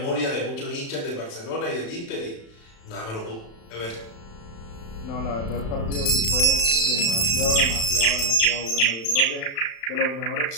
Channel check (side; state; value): right; late; 36 ms